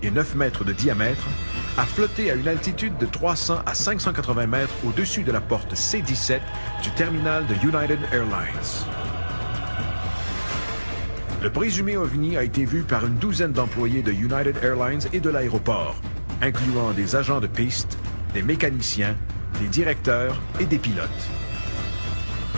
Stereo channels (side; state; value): both; inverted; correlation -1.00